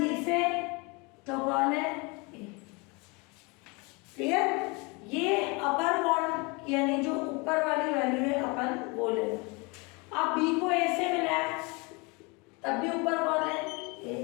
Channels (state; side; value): quieter; right; 28.6 dB